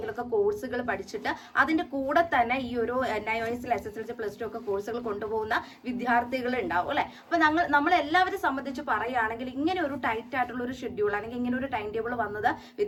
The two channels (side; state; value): both; identical; correlation 1.00